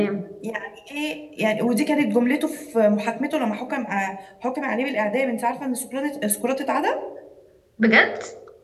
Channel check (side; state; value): both; identical; correlation 1.00